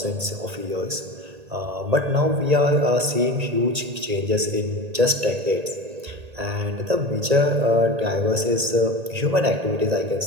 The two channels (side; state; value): left; late; 1.8 ms